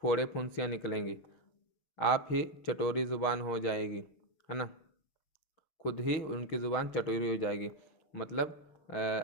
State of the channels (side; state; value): right; late; 6.5 ms